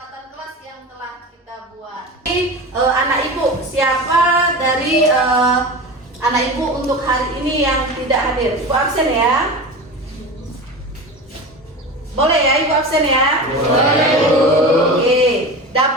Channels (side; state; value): both; normal; correlation 0.29